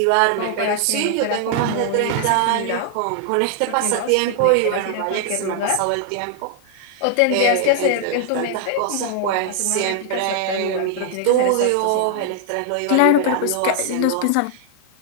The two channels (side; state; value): both; different; correlation 0.00